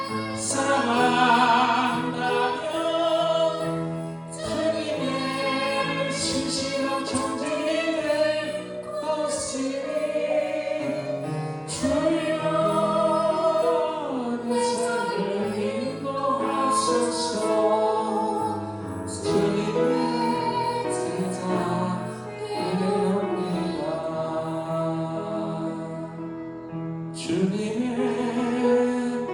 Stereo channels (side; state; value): both; identical; correlation 1.00